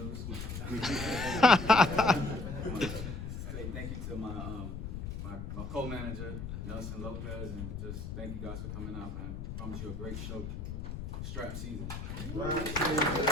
Say thank you to my co-manager, Nelson Lopez, and just thank you guys for coming out, man. I promise you a great show. Strap season. We'll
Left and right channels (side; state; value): left; noise; rumble, 6 dB below the sound